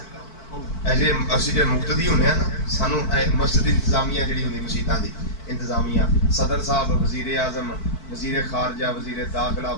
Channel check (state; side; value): late; right; 4.5 ms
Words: ایسے اسی جو مقتدی ہونے ہیں نا سانو مسجد انتظامیہ جڑی ہوندی مسجداں دی انتظامیہ صدر صاحب وزیر اعظم وزیر خارجہ وزیر داخلہ